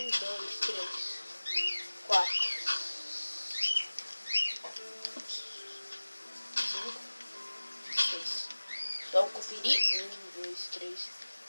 2, 3, 4. 6. Vamos conferir. 1, 2, 3,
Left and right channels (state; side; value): inverted; both; correlation -1.00